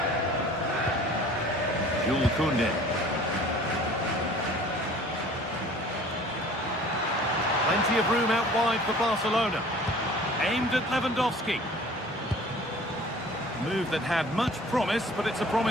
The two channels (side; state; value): both; normal; correlation 0.48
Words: Jules Koundé. Plenty of room out wide for Barcelona. Aimed at Lewandowski. Move that had much promise, but it's a